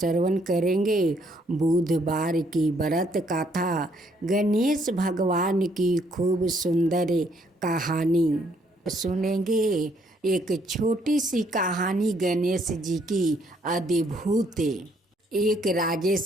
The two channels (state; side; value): normal; both; correlation 0.68